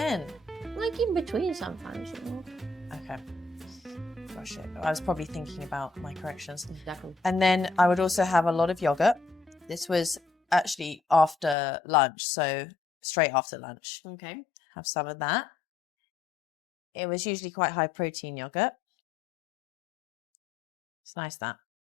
Like in between sometimes, Okay. Gosh, I was probably thinking about my corrections. Exactly. And then I would also have a lot of yogurt. This was actually after lunch, so straight after lunch. Okay. Have some of that. It was usually quite high protein yogurt. It's nice, that.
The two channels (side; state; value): right; drops out; at 11.6 s